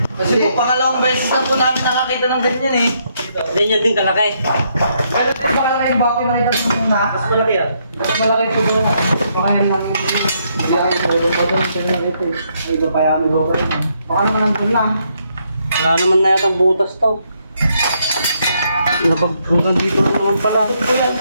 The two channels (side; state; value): both; inverted; correlation -0.74